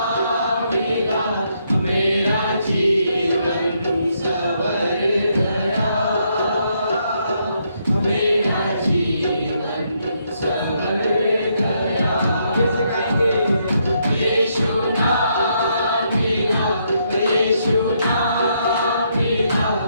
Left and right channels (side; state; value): both; inverted; correlation -0.75